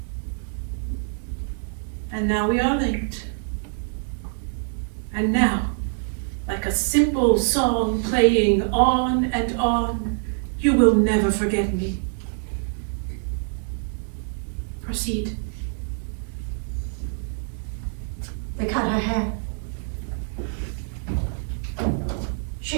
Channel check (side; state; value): left; silent; digital silence